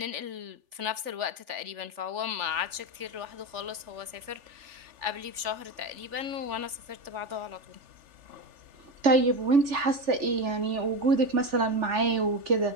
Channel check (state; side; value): late; left; 3.4 ms